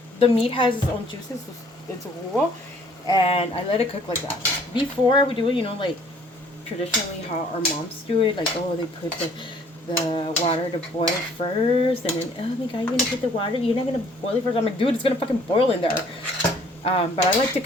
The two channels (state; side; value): normal; both; correlation 0.58